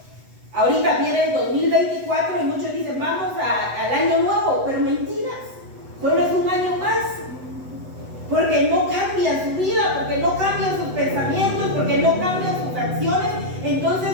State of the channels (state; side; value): late; left; 8.0 ms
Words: ahorita viene el 2024 y muchos dicen, vamos al año nuevo, pero mentiras, solo es un año más. Porque no cambian su vida, porque no cambian sus pensamientos, porque no cambian sus acciones.